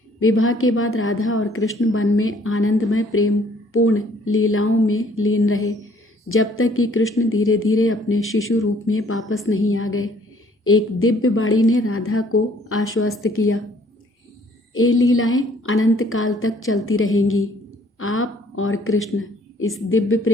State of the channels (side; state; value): both; normal; correlation 0.60